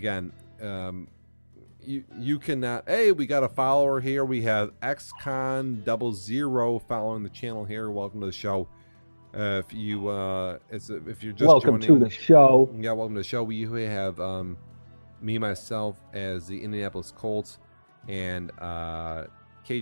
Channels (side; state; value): both; inverted; correlation -1.00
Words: You cannot. Hey, we got a follower here. We have XCon00 following the channel here. Welcome to the show. If you're just welcome joining, to the show. Yeah, welcome to the show. We have me myself as the Indianapolis Colts, and